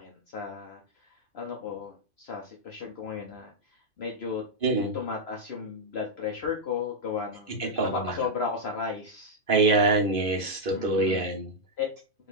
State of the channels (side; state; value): right; late; 2.5 ms